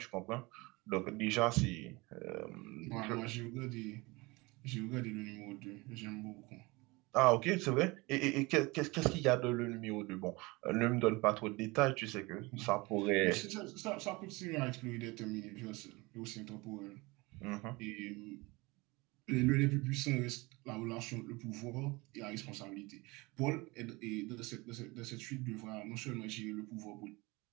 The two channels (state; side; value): quieter; left; 24.0 dB